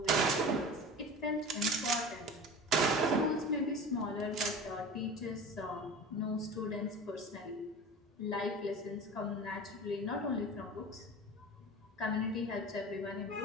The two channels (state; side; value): normal; both; correlation 0.35